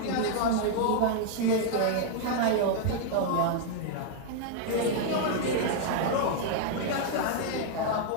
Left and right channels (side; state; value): both; different; correlation 0.00